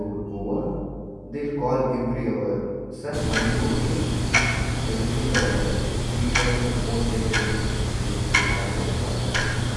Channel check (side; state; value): both; identical; correlation 1.00